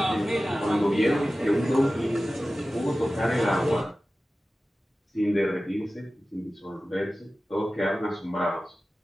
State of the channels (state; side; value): normal; both; correlation 0.96